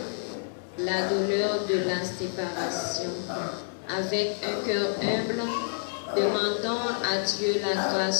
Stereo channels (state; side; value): silent; right; digital silence